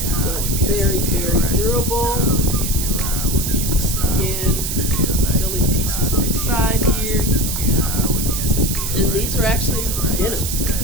very, very durable. Again, Philly pieces inside here. And these are actually denim.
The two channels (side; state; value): right; noise; hiss, 3 dB below the sound